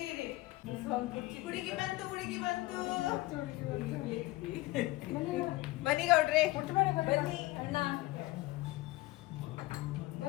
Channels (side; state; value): right; quieter; 19.5 dB